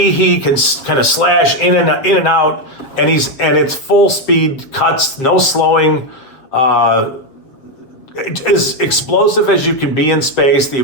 he can kind of slash in and out, and it's full speed cuts, no slowing. As explosive as you can be in space, the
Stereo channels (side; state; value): right; late; 7.5 ms